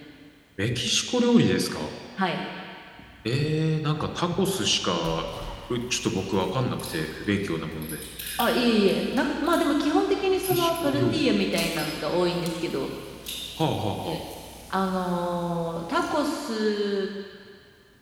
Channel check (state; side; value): identical; both; correlation 1.00